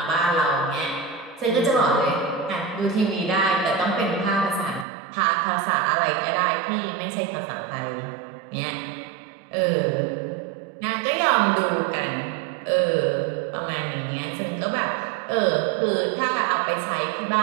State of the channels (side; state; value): left; drops out; at 4.9 s